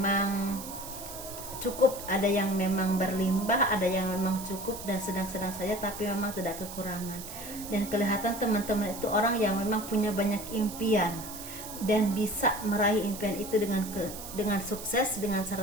cukup. Ada yang memang berlimpah, ada yang memang cukup dan sedang-sedang saja, tapi memang tidak kekurangan. Dan kelihatan teman-teman itu orang yang memang punya banyak impian dan bisa meraih impian itu dengan sukses, dengan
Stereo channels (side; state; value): right; noise; hiss, 11 dB below the sound